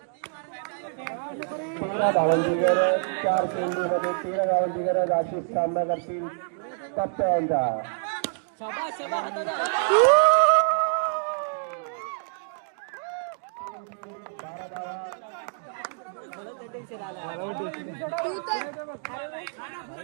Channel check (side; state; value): left; silent; digital silence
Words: 13 धावांची गरज. 4 चेंडू मध्ये 13 धावांची गरज. अशी सामना करतील पप्प्या यांचा.